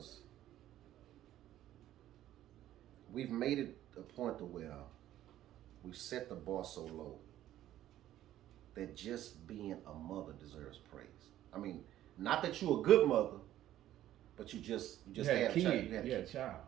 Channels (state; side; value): quieter; left; 13.0 dB